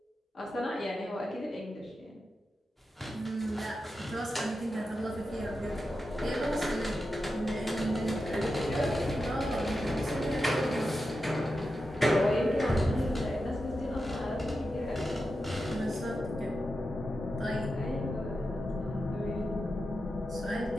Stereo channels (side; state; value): both; normal; correlation 0.90